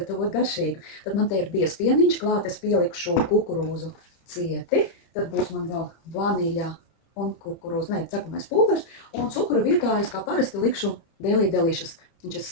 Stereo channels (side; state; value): right; late; 30 ms